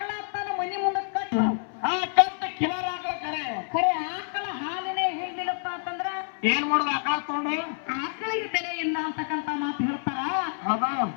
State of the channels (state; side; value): silent; right; 60 dB below the other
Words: ತನ್ನ ಮನಿ ಮುಂದೆ ಕಟ್ಟು ಕಟ್ಟ ಕಿಲರ್ ಆಕಳ ಖರೆ ಆಕಳ ಹಾಲಿನೇ ಹಿಡ್ಲಿಲ್ಲಪ್ಪ ಅಂತಂದ್ರ ಏನ್ ಮಾಡುದ ಆಕಳ ತಗೊಂಡು ಆಕಳಿಗೆ ಬೆಲೆ ಇಲ್ಲ ಅಂತಕ್ಕಂಥ ಮಾತು ಹೇಳ್ತಾರ. ಹೌದು